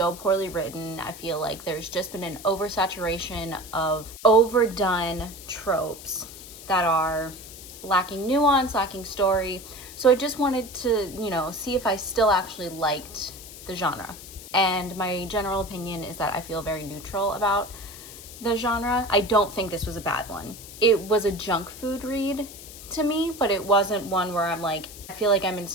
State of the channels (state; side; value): noise; left; hiss, 15 dB below the sound